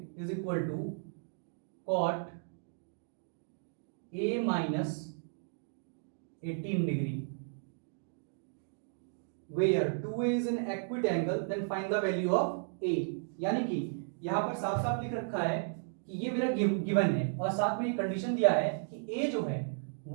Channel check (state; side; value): silent; left; digital silence